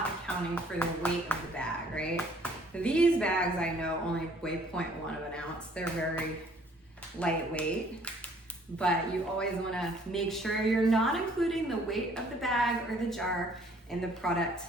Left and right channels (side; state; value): both; normal; correlation 0.59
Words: accounting for the weight of the bag, right? These bags I know only weigh 0.1 of an ounce. They're very lightweight, but you always want to make sure you're not including the weight of the bag or the jar in the product